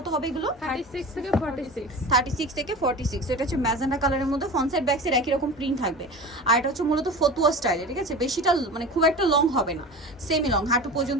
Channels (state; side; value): normal; both; correlation 0.33